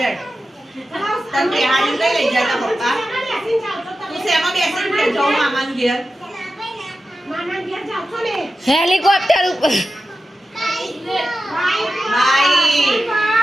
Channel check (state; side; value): normal; both; correlation 0.92